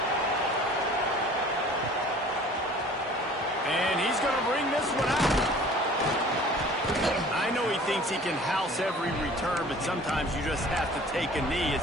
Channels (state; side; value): normal; both; correlation 0.48